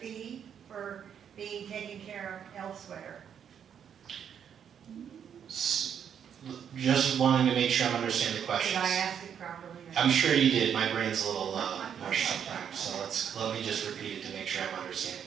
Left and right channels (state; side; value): quieter; left; 8.3 dB